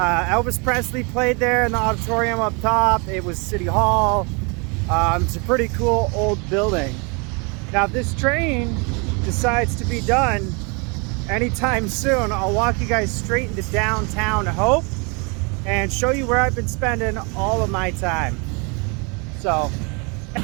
Presley played there in the auditorium up top. It was City Hall. It's a pretty cool old building. Now, if this train decides to be done anytime soon, I'll walk you guys straight into downtown Hope and show you where I've been spending all of my time. So,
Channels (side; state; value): left; quieter; 31.8 dB